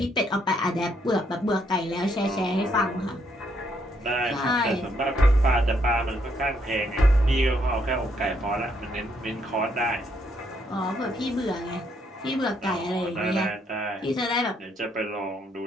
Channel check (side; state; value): both; normal; correlation 0.72